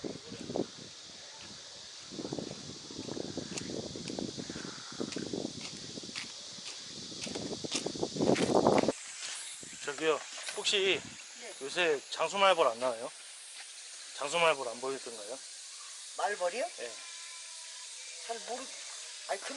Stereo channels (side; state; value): both; identical; correlation 1.00